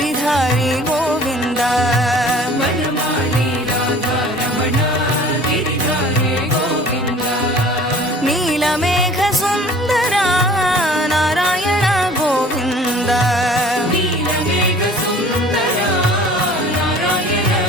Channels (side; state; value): both; normal; correlation 0.48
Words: ಗೋವಿಂದ. ವನಮಾಲಿ ರಾಧಾರಮಣ ಗಿರಿಧಾರಿ ಗೋವಿಂದ. ನೀಲಮೇಘ ಸುಂದರ ನಾರಾಯಣ ಗೋವಿಂದ. ನೀಲಮೇಘ ಸುಂದರ ನಾರಾಯಣ